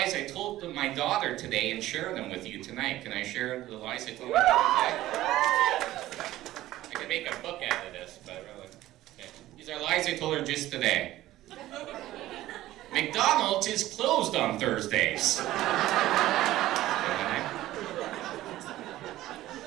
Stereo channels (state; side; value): quieter; left; 15.3 dB